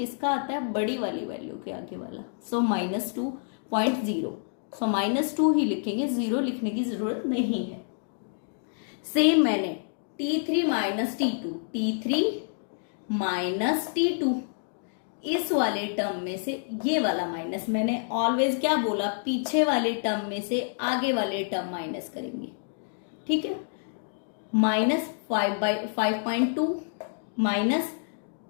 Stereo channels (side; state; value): right; silent; digital silence